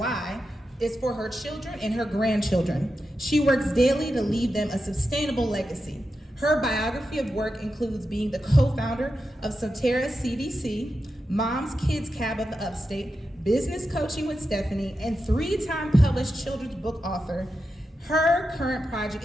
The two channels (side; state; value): both; normal; correlation 0.89